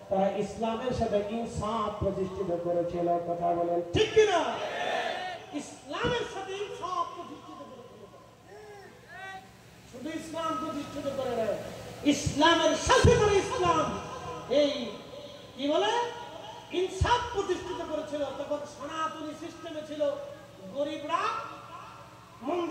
তারা ইসলামের সাথে ইনসাফ প্রতিষ্ঠিত করেছিল। কথা বলেন ঠিক কিনা? ইসলামের সাথে ইনসাফ প্রতিষ্ঠিত করেছিল। শুধু ইসলাম প্রতিষ্ঠিত করে নাই, ইসলামের সাথে করে ইসলাম এই কি বলে ইনসাফ প্রতিষ্ঠিত করেছিল। তখন সনাতনী সিস্টেমে ছিল, গরিবরা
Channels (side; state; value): both; identical; correlation 1.00